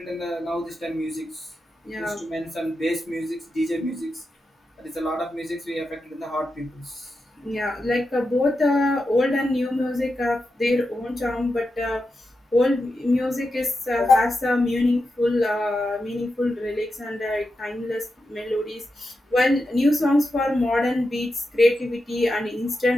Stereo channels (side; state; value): both; normal; correlation 0.89